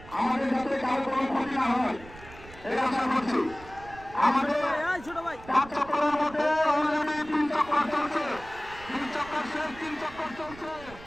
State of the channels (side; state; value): right; noise; rumble, 18 dB below the sound